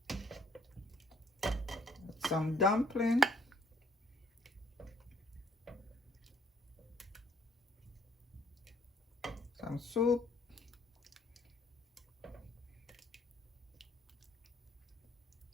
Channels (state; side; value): normal; both; correlation 0.63